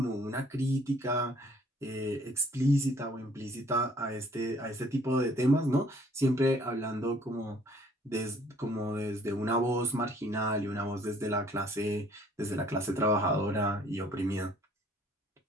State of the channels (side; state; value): both; normal; correlation 0.59